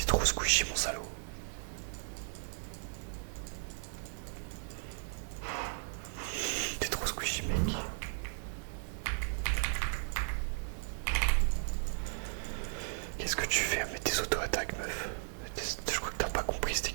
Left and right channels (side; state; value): left; silent; 54 dB below the other